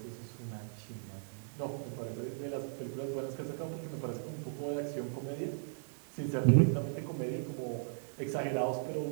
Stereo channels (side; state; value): left; silent; digital silence